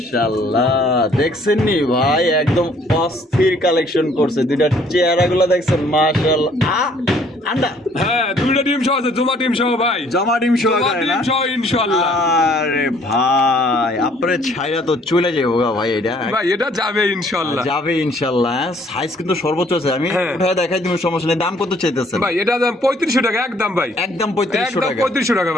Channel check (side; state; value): both; normal; correlation 0.61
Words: দেখছেন নি ভাই, একদম অস্থির কালেকশন করছে। দুইটা চেহারাগুলো দেখছেন মাশাআল্লাহ। আন্ডা হ্যাঁ, দুইটা টিম সহ আছে, জমা টিম সহ ভাই। জমা ডিম সহ জমা টিম সহ ইনশাআল্লাহ। আরে ভাই, আপনার ছাইরা তো চলে যাবো গা ভাই। এটা ভাই এটা যাবে ইনশাআল্লাহ। যাবে ইনশাআল্লাহ। সাইজ কিন্তু সর্বোচ্চ আছে। আমি হ্যাঁ। উঠায় দেখাই দিব, সমস্যা নেই। দাম কত চাইতেছেন? ভাই এটা দাম 3500 টাকা একদম ভাই। একদম 3500 একদম টাকা। 3500 টাকা